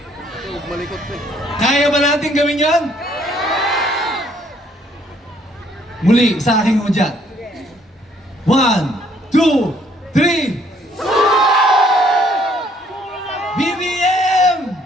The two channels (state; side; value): normal; both; correlation 0.64